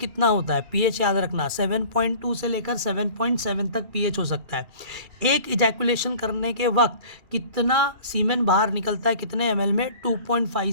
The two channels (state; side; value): late; left; 2.4 ms